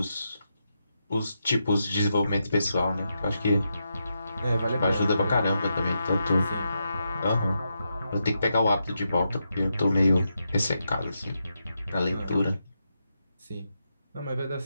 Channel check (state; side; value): inverted; both; correlation -0.85